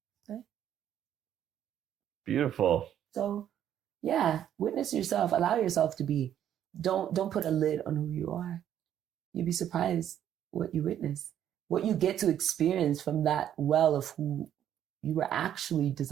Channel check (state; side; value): quieter; left; 10.4 dB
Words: Beautiful. So, yeah, witness yourself. Allow yourself to be. Don't put a lid on who you are. You'd be surprised what you witness, what you get to experience from that well of who you were actually